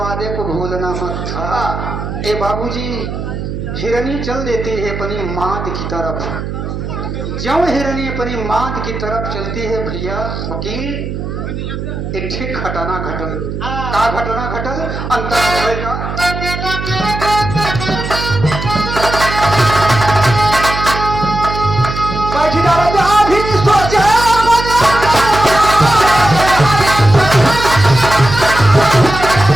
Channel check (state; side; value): noise; right; hum, 6 dB below the sound